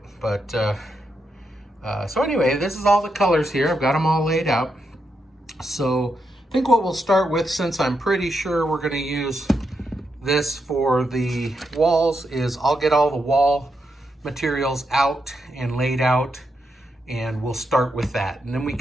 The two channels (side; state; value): both; normal; correlation 0.83